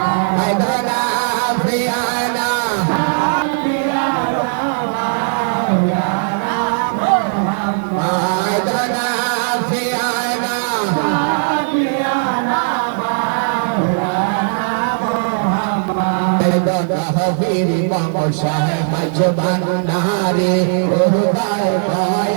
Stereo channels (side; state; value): left; silent; digital silence